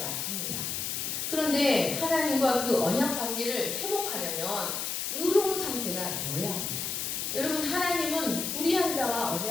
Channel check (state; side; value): noise; left; hiss, 2 dB below the sound